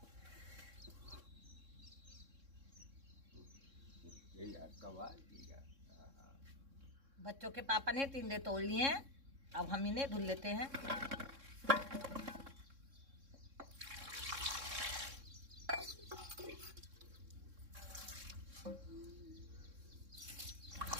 बच्चों के पापा ने टिंडे तोड़ लिए हैं, अब हम इन्हें धुल लेते हैं।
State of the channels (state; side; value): late; left; 3.6 ms